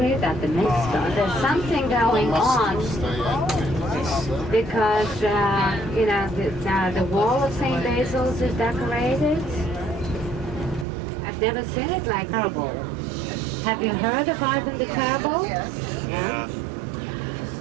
that the myth started. There's something going on because, you know, the wall of St. Basil's is decorated. I've never seen it like terrible. Have you heard of Ivan the Terrible? Yes. Yeah.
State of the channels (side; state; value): left; drops out; at 10.9 s